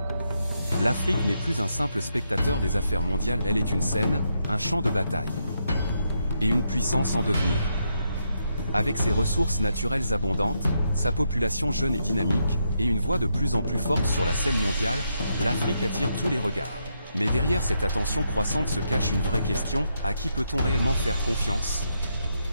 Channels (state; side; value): inverted; both; correlation -0.80